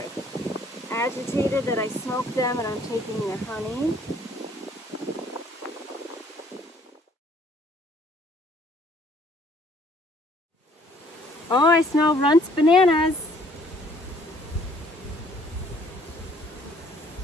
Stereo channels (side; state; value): both; normal; correlation 0.60